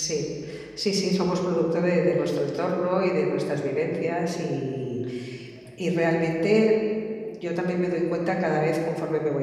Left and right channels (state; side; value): identical; both; correlation 1.00